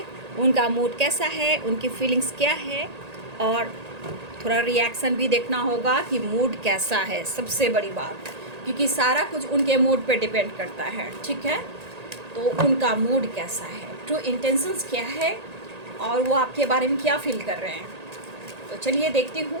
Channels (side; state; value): left; late; 1.8 ms